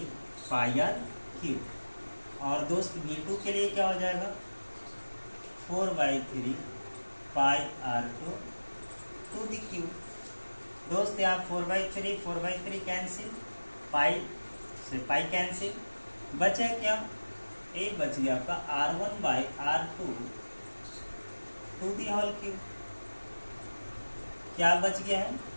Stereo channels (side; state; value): both; inverted; correlation -1.00